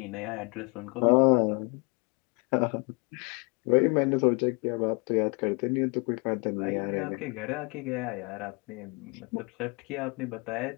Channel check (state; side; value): quieter; right; 31.4 dB